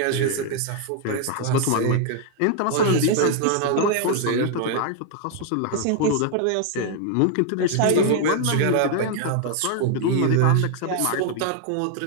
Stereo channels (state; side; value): different; both; correlation 0.00